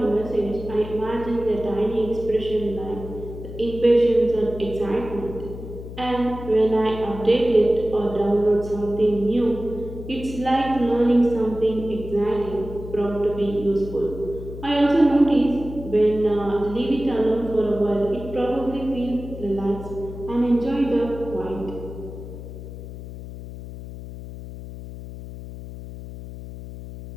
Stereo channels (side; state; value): left; noise; hum, 11 dB below the sound